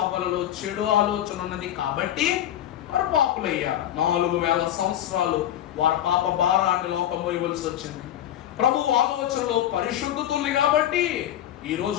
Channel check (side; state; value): right; quieter; 11.7 dB